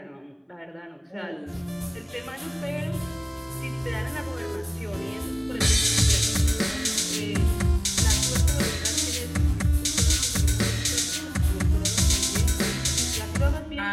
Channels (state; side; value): identical; both; correlation 1.00